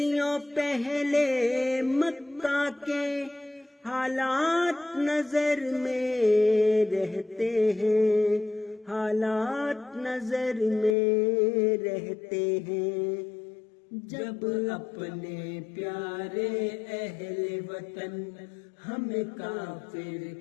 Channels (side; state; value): right; drops out; at 11.0 s